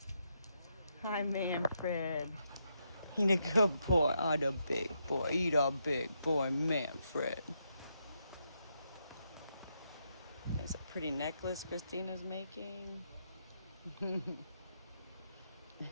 Hi, Manfred. He a good boy. Oh, the big boy. He the big boy, Manfred. There's a pretty necklace Christina's making. And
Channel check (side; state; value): both; inverted; correlation -0.80